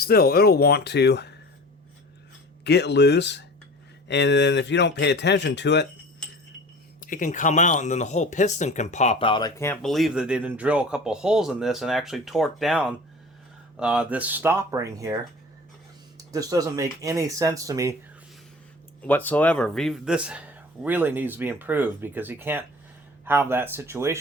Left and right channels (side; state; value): both; normal; correlation 0.41